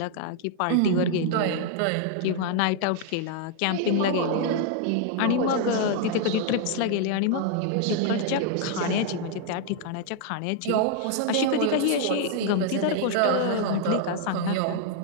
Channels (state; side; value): different; both; correlation 0.00